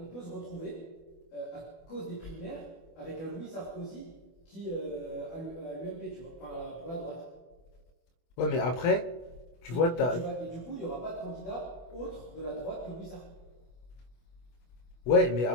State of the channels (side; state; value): right; late; 24 ms